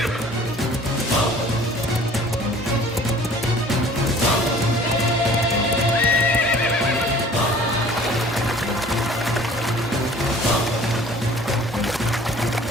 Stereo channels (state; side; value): normal; both; correlation 0.50